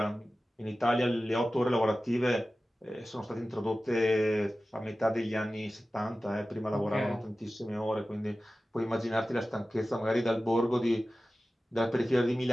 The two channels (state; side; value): normal; both; correlation 0.95